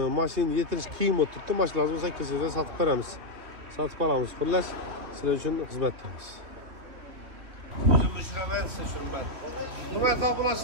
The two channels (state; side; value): late; left; 3.0 ms